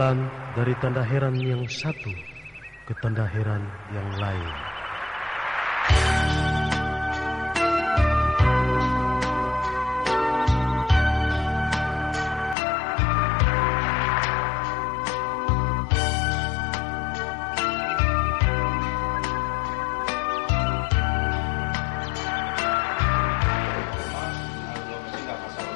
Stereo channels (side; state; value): right; drops out; at 12.6 s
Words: dari tanda heran yang satu ke tanda heran yang lain.